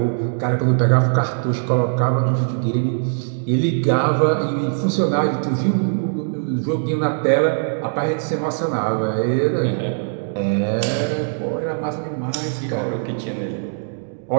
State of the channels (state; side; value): silent; left; digital silence